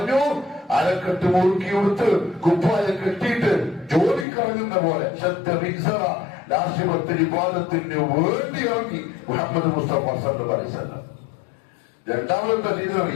അരക്കെട്ട് മുറുക്കി കൊടുത്ത് കുപ്പായ കെട്ടിയിട്ട് ജോലിക്കിറങ്ങുന്ന പോലെ രാഷ്ട്രീയത്തിന് വിവാദത്തിന് വേണ്ടി ഇറങ്ങി മുഹമ്മദ് മുസ്തഫ സല്ലല്ലാഹു അലൈഹി വസല്ലം. രണ്ടാമതെന്താ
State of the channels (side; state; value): right; drops out; at 4.2 s